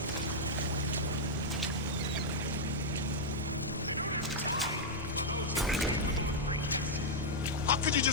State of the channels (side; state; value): both; normal; correlation -0.04